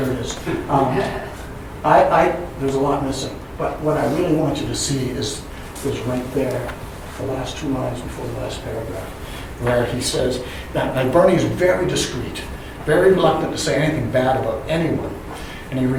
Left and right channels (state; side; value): identical; both; correlation 1.00